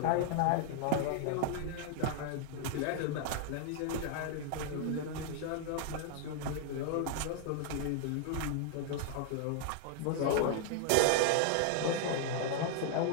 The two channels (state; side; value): different; both; correlation 0.00